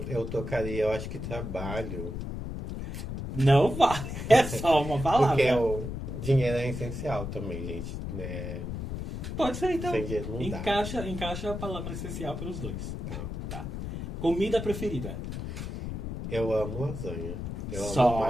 Eu acho que trabalho. Não vale. É só uma palavra. Porque o dinheiro é essencial também, gente. Né? Pode ser, então. Sem dinheiro não dá. Encaixa a palavra essencial para os dois. Tá. Tá. Comida preferida. Eu amo lasanha. Eu amo Só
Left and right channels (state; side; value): noise; left; rumble, 6 dB below the sound